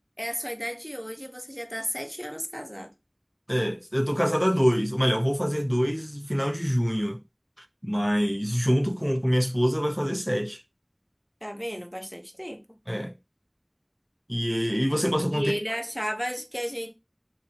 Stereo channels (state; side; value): identical; both; correlation 1.00